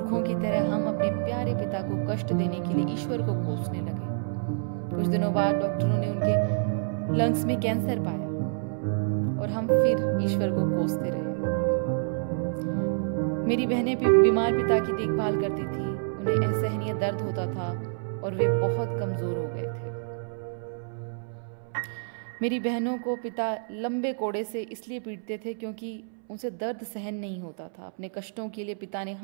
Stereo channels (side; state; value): left; silent; 59 dB below the other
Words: की तरह हम अपने प्यारे पिता को कष्ट देने के लिए ईश्वर को कोसने लगे। कुछ दिनों बाद डॉक्टरों ने उनके लंग्स में कैंसर पाया और हम फिर ईश्वर को कोसते रहे। मेरी बहनें बीमार पिता की देखभाल करती थी। उन्हें असहनीय दर्द होता था और वे बहुत कमजोर हो गए थे। मेरी बहनों को पिता लंबे कोड़े से इसलिए पीटते थे क्योंकि उनसे दर्द सहन नहीं होता था। अपने कष्टों के लिए पिता ने